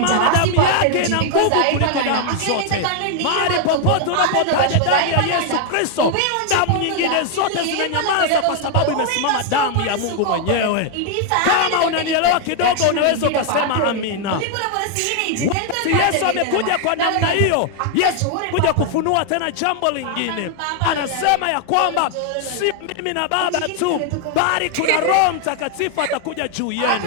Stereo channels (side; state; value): both; different; correlation 0.00